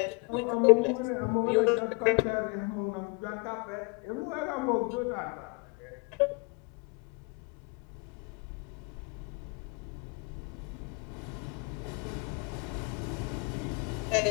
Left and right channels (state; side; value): quieter; right; 30.9 dB